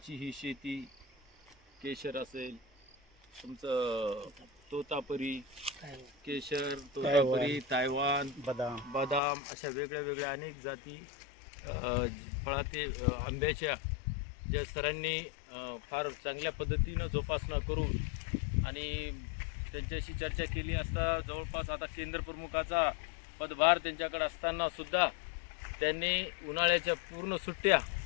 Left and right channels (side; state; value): right; drops out; at 9.2 s